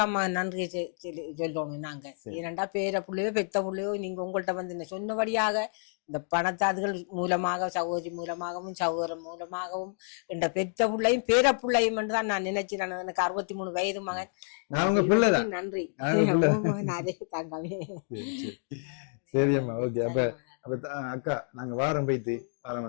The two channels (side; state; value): right; silent; digital silence